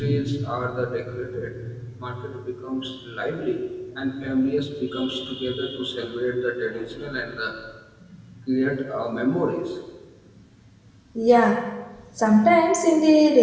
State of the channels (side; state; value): both; identical; correlation 1.00